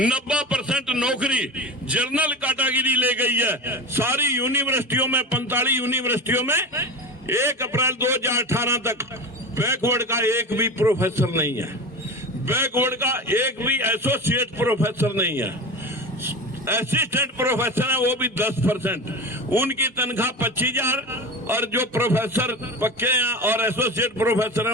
नौकरी जनरल कैटेगरी ले गई है। सारी यूनिवर्सिटियों में 45 यूनिवर्सिटियों में 1 अप्रैल 2018 तक बैकवर्ड का एक भी प्रोफेसर नहीं है, बैकवर्ड का एक भी एसोसिएट प्रोफेसर नहीं है। असिस्टेंट प्रोफेसर है वो भी 10%, उनकी तनख्वाह 25,000 और जो प्रोफेसर पक्के हैं और एसोसिएट प्रोफेसर है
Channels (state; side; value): normal; both; correlation 0.26